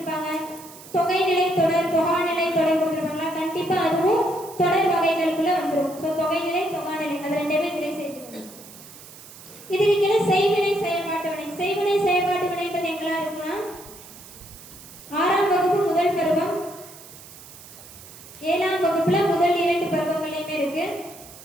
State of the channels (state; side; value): noise; right; hiss, 18 dB below the sound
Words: தொகைநிலை தொடர், தொகாநிலை தொடர் கொடுத்துருப்பாங்களா, கண்டிப்பா அதுவும் தொடர் வகைகளுக்குள்ள வந்துடும். ஸோ தொகைநிலை, தொகாநிலை அது ரெண்டுமே இதிலே சேர்த்துக்கணும். இதுக்கு கீழே செய்வினை, செயல்பாட்டு வினை. செய்வினை, செயல்பாட்டு வினைன்றது எங்கெல்லாம் இருக்குன்னா 6ஆம் வகுப்பு முதல் பருவம், 7ஆம் வகுப்புல முதல் 2 பருவங்களையுமே இருக்கு.